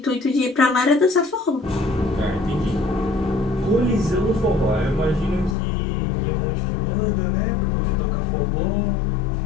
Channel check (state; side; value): drops out; right; at 5.6 s